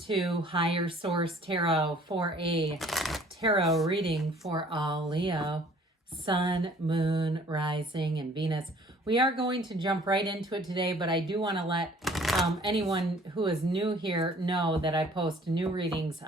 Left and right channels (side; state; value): both; normal; correlation 0.55